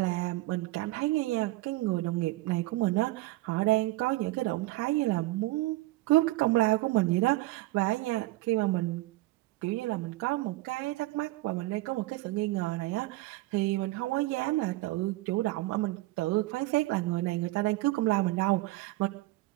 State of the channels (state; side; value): quieter; left; 18.9 dB